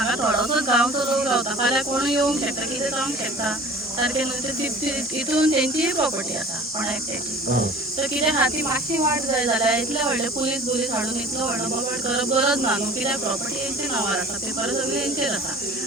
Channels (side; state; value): both; normal; correlation 0.45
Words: थोडोसोच गांवचो लोक रावता फाल्यां कोण येवंक शकता कितें जावंक शकता सारकें न्हू हितून तेंची प्रॉपर्टी आसा कोणा एकट्याची तर कितें आहा ती मातशी वाट जाय जाल्यार इतले व्हडले पुलीस हाडून इतलो व्हडलो बोबाड करप गरज ना न्हू कित्याक प्रॉपर्टी हेंचे नांवार आसा पेपर सगळे हेंचेर आसा